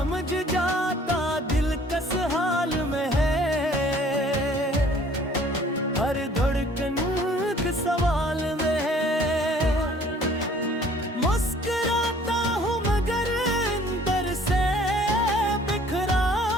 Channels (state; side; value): normal; both; correlation 0.55